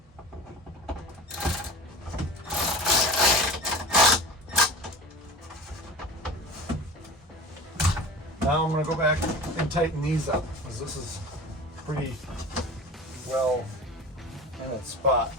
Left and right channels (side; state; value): both; normal; correlation 0.36